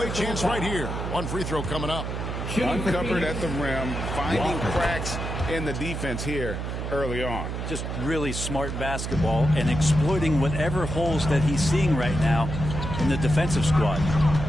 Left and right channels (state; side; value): noise; right; hum, 4 dB below the sound